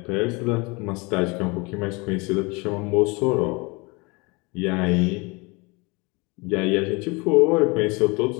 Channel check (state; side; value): quieter; right; 27.5 dB